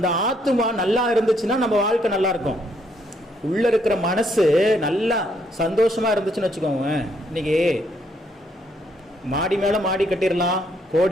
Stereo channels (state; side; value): normal; both; correlation 0.71